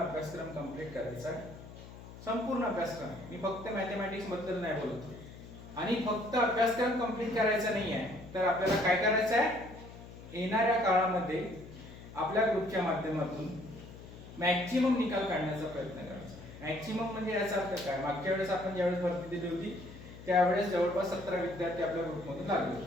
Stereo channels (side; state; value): left; noise; hum, 16 dB below the sound